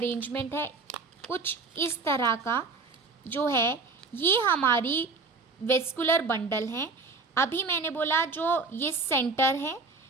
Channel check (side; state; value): left; quieter; 4.1 dB